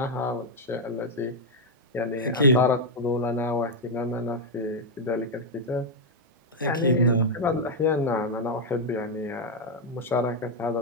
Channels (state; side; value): normal; both; correlation 0.00